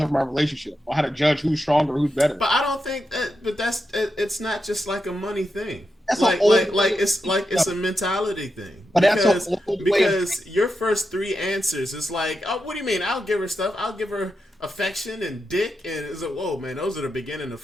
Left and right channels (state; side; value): normal; both; correlation 0.87